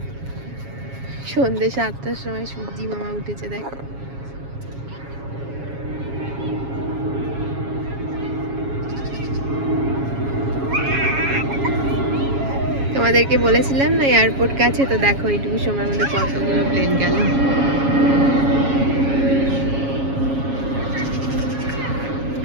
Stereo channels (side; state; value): left; late; 7.3 ms